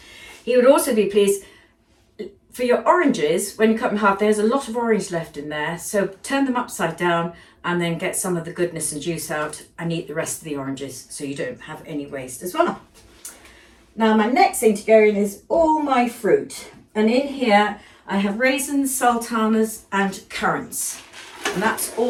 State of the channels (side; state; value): both; identical; correlation 1.00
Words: He would also be pleased for your oranges, when you cut them in half, there's a lot of orange left in there, so turn them upside down and then get some of the goodness and juice out and eat the rest of the oranges so you don't have any waste as well. Now my next thing to go in is all my fruit, and in here I have raisins, sultanas and currants, and that's